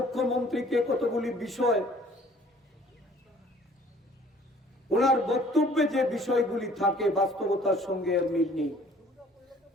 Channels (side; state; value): both; normal; correlation 0.55